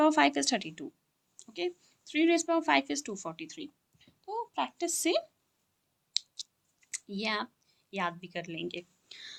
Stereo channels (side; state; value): both; identical; correlation 1.00